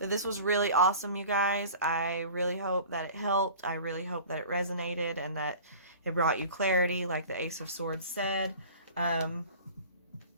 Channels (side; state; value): both; inverted; correlation -0.42